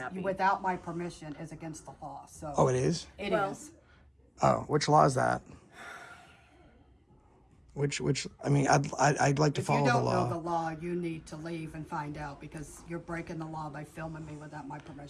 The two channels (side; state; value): both; identical; correlation 1.00